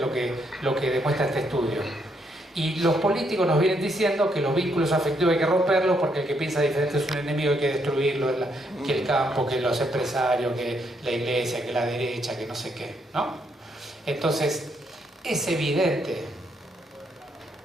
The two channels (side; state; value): both; normal; correlation 0.75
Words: lo que demuestra este estudio. Y los políticos nos vienen diciendo que los vínculos afectivos hay que romperlos porque el que piensa diferente es un enemigo, hay que destruirlo, que el campo, que los empresarios, que la iglesia, que la derecha, que no sé qué, ¿no? Entonces, es evidente